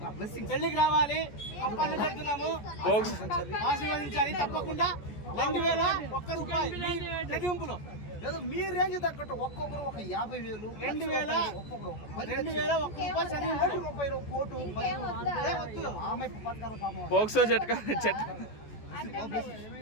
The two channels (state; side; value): late; right; 14 ms